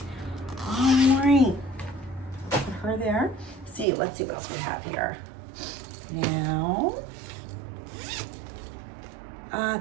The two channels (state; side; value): drops out; left; at 3.9 s